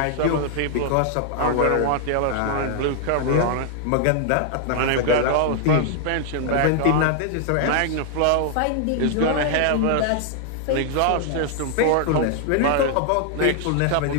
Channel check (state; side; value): different; both; correlation 0.00